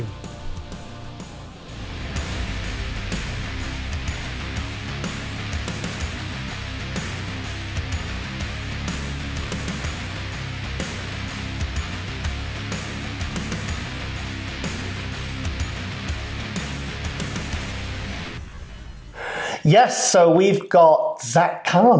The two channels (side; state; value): both; identical; correlation 1.00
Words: Yes, so we've got Zach